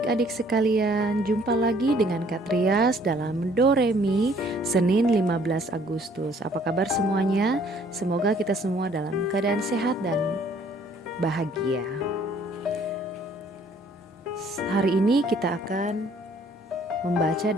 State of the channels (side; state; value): both; normal; correlation 0.60